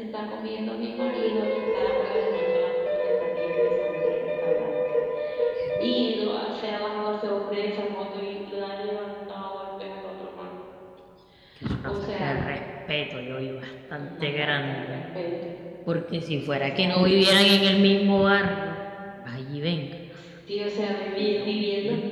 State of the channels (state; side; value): identical; both; correlation 1.00